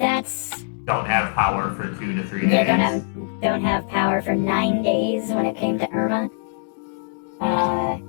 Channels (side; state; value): right; silent; digital silence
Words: Don't have power for 2 to 3 days. Yeah, don't have power for 9 days when it came to Irma.